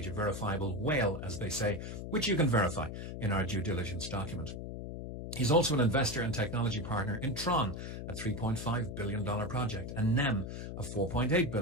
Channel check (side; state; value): left; noise; hum, 7 dB below the sound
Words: a verifiable whale, as they say, which you can verify in our due diligence document. He's also an investor and technology partner in Tron, a $3.5 billion project, and NEM, a $4.8